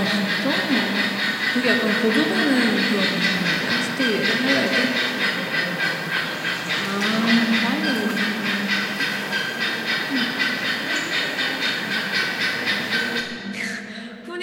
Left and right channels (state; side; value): identical; both; correlation 1.00